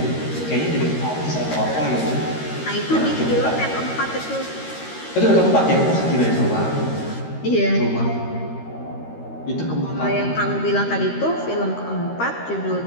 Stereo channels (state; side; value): late; right; 13 ms